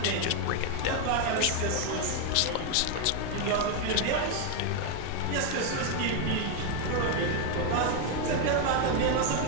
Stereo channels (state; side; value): different; both; correlation 0.01